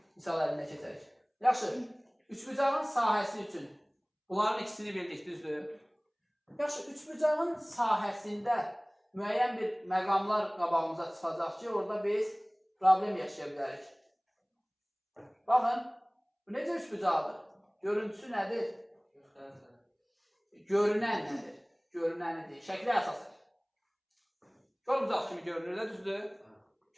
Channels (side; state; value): both; identical; correlation 1.00